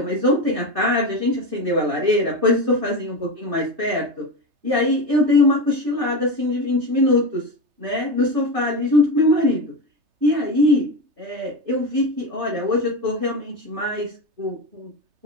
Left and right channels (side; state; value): left; late; 3.3 ms